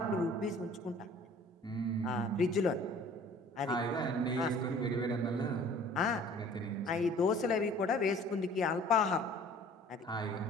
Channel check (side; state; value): both; normal; correlation 0.50